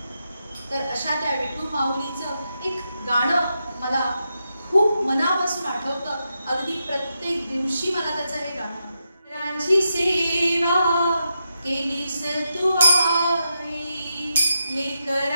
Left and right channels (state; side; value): inverted; both; correlation -0.85